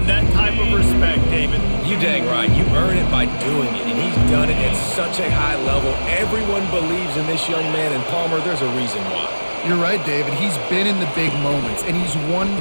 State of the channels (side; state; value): both; inverted; correlation -1.00